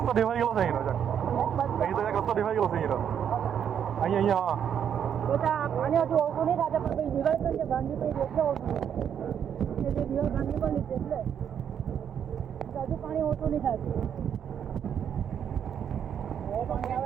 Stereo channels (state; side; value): quieter; left; 8.6 dB